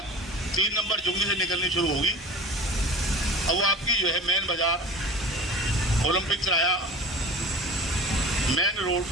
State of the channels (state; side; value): normal; both; correlation 0.39